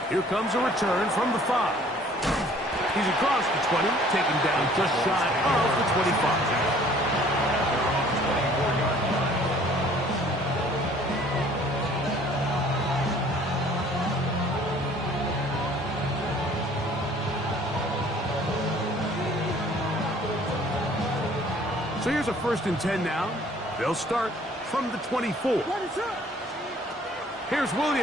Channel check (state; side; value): normal; both; correlation 0.55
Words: Here comes a return from the 5. He's across the 20, taken down just shy of the 25. So here's a 1st and 10 now. They'll start from the 24. Here's